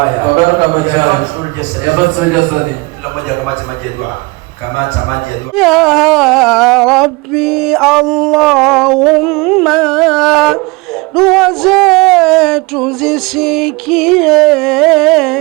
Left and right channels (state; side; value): quieter; left; 26.0 dB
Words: ya fathul jasadi, kila mmoja kamati maji ya dua. Ya Rabbi, Allahumma, dua zetu zisikie,